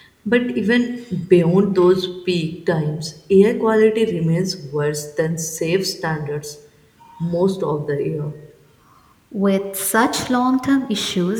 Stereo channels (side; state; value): both; identical; correlation 1.00